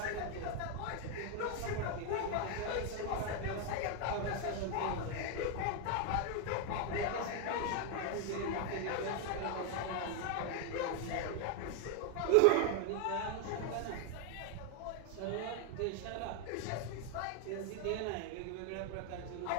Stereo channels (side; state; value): both; different; correlation 0.01